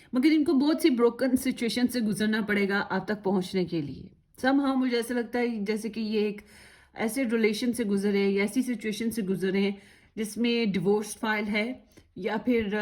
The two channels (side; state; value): both; identical; correlation 1.00